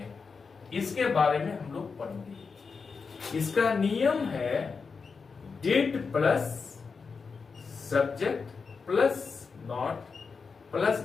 इसके बारे में हम लोग पढ़ेंगे। इसका नियम है did plus subject plus not plus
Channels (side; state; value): right; quieter; 5.1 dB